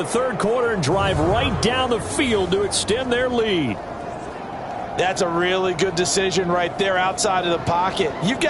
3rd quarter and drive right down the field to extend their lead. That's a really good decision right there outside of the pocket. You've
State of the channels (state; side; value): identical; both; correlation 1.00